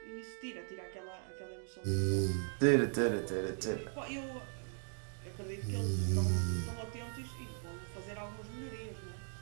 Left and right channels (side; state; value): left; silent; 52 dB below the other